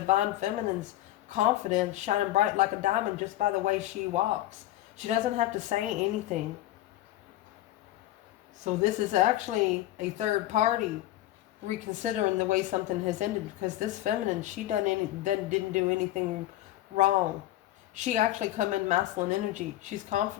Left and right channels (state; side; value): quieter; right; 14.8 dB